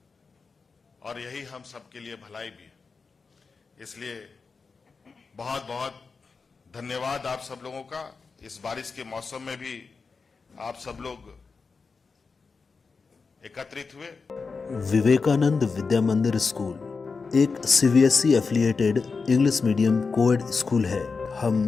और यही हम सबके लिए भलाई भी है। इसलिए बहुत बहुत धन्यवाद आप सब लोगों का। इस बारिश के मौसम में भी आप सब लोग एकत्रित हुए। विवेकानंद विद्या मंदिर स्कूल एक CBSE affiliated English medium coed school है।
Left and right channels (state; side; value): quieter; right; 4.7 dB